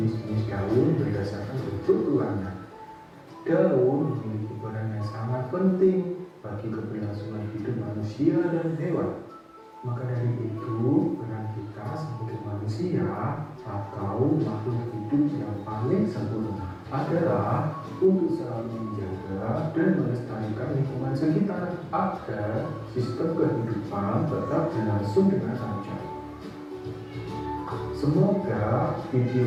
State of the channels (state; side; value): identical; both; correlation 1.00